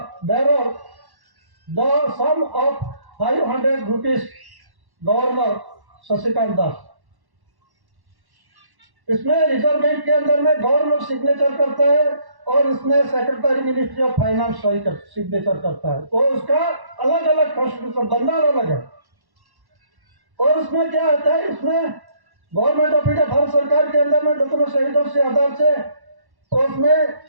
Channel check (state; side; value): late; left; 1.1 ms